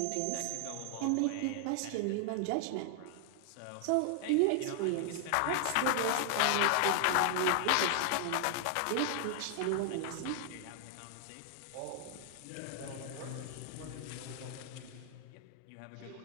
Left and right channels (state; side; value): different; both; correlation 0.00